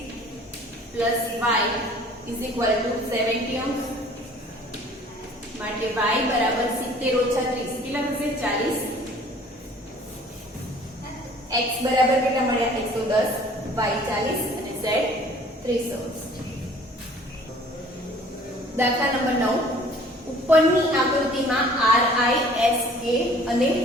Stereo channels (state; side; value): normal; both; correlation 0.52